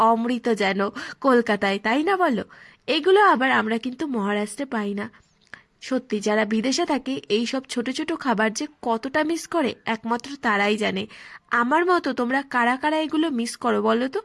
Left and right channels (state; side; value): identical; both; correlation 1.00